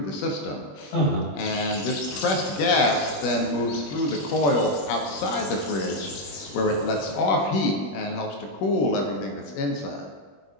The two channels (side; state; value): right; late; 21 ms